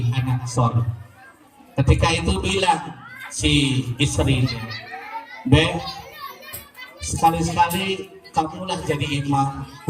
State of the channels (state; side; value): identical; both; correlation 1.00